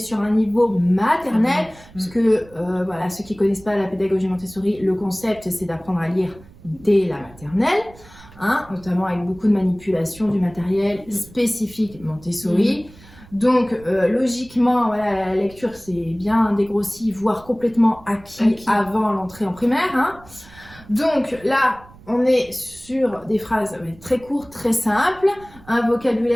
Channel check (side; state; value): right; noise; rumble, 23 dB below the sound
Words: un niveau maternel, parce que voilà, ceux qui connaissent pas la pédagogie Montessori, le concept c'est d'apprendre à lire dès la maternelle. Notamment avec beaucoup de manipulation du matériel spécifique Montessori. Donc logiquement, voilà, la lecture c'est bien dégrossi, voire complètement acquis avant l'entrée en primaire. Donc là, on est sur des phrases très courtes, très simples, un